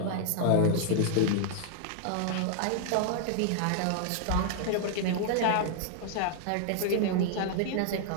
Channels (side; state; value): both; different; correlation -0.01